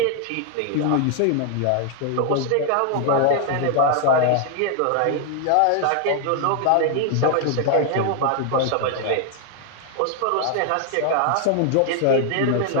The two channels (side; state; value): both; different; correlation 0.00